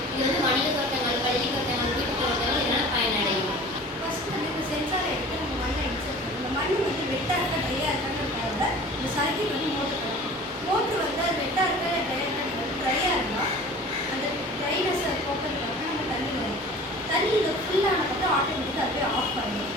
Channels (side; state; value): both; normal; correlation 0.42